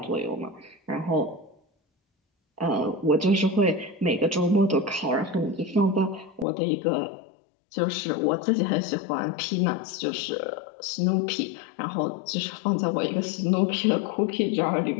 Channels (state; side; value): drops out; right; at 6.5 s